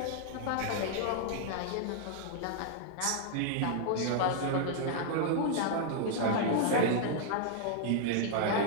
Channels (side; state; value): both; different; correlation -0.01